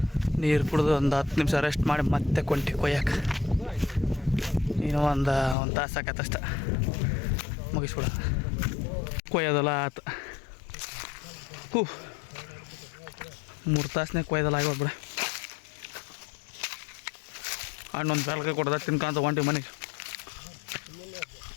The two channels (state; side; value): drops out; right; at 5.6 s